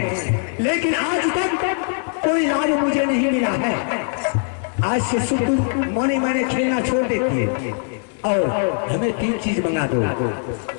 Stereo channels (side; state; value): right; silent; 56 dB below the other